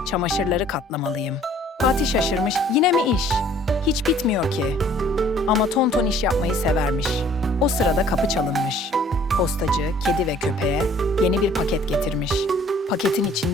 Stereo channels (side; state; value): both; normal; correlation 0.55